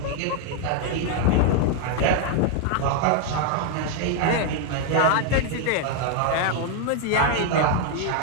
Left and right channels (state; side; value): different; both; correlation 0.00